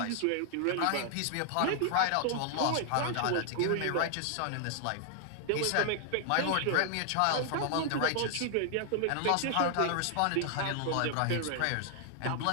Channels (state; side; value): different; both; correlation 0.00